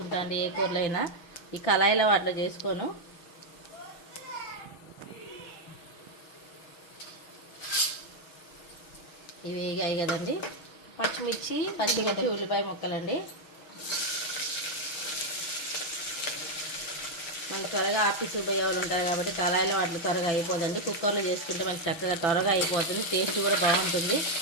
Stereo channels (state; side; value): late; right; 6.2 ms